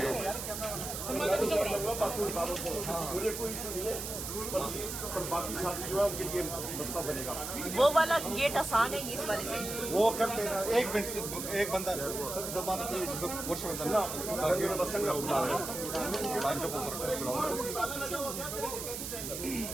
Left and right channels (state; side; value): noise; right; hiss, 6 dB below the sound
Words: हैं। मुझे कोई इशू नहीं है, पर बाकी साथी जो है उनके लिए मसला बनेगा। वो वाला गेट आसान है इस वाले से। वो करते हैं। एक मिनट एक बंदा जबान